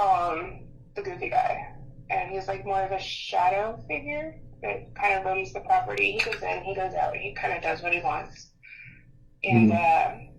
him the goofy guy, and he's like more of a shadow figure that kind of roams the property. He goes in, he goes out, he kind of does what he wants. And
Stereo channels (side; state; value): both; identical; correlation 1.00